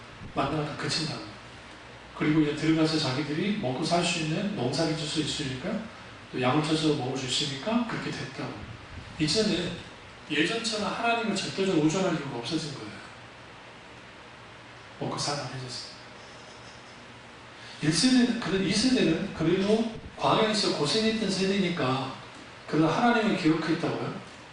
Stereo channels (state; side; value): identical; both; correlation 1.00